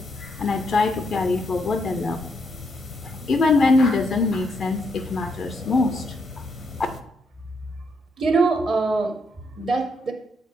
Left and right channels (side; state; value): both; normal; correlation 0.77